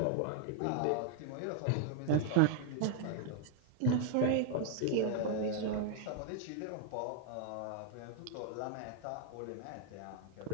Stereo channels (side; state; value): both; different; correlation 0.00